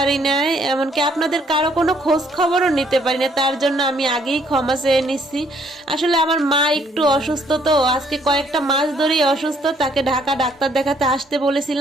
না, এমনকি আপনাদের কারো কোনো খোঁজ খবরও নিতে পারি না। তার জন্য আমি আগেই ক্ষমা চেয়ে নিচ্ছি। আসলে আমার মা একটু অসুস্থ, তো আজকে কয়েকটা মাস ধরেই অসুস্থ। তাকে ঢাকা ডাক্তার দেখাতে আসতে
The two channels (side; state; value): both; normal; correlation 0.66